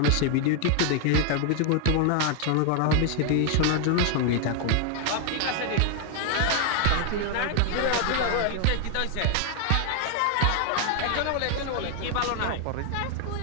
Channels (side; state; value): both; different; correlation 0.00